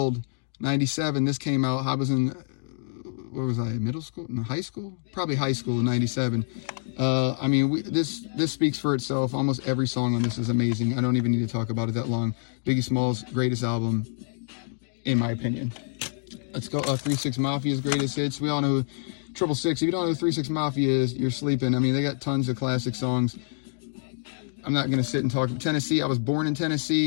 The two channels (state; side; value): silent; right; digital silence